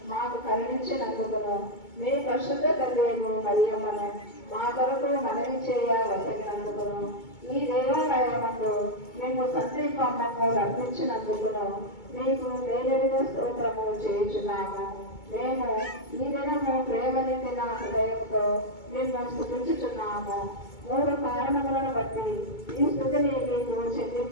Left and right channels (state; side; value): late; right; 2.2 ms